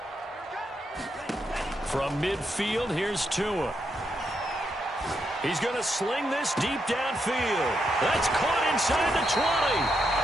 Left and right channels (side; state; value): both; normal; correlation 0.81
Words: From midfield, here's Tua. He's going to sling this deep downfield. That's caught inside the 20.